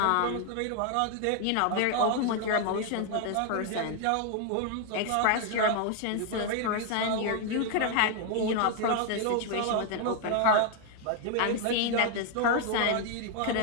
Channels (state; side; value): different; both; correlation 0.00